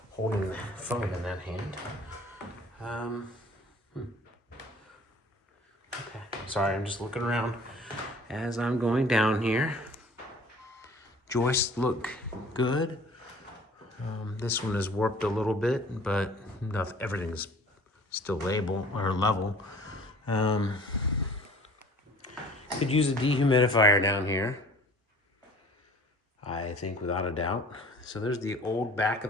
holding the phone in that hand. Okay, sorry, I'm just looking around as I'm going down here. Joists look good. This one is warped a little bit, but everything's still level. Could use a dehumidifier down here, I think, without a doubt. So there's the old back of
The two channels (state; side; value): normal; both; correlation 0.49